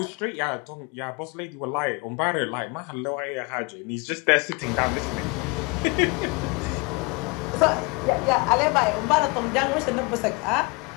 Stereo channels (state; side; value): quieter; right; 28.1 dB